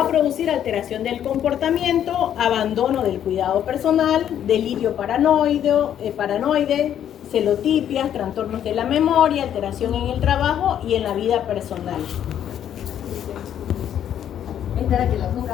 a producir alteración del comportamiento, abandono del cuidado personal, delirio paranoide, celotipias, trastornos de la memoria, alteración en el trabajo y en la vida personal. Esta era que la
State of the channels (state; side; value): quieter; right; 10.0 dB